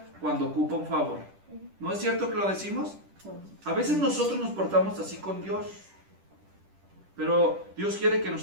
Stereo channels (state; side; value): late; left; 10 ms